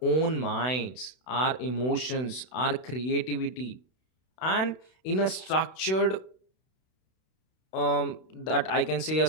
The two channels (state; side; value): late; right; 32 ms